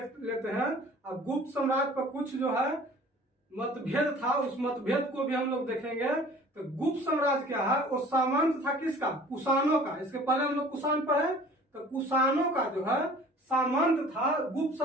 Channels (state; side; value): normal; both; correlation 0.48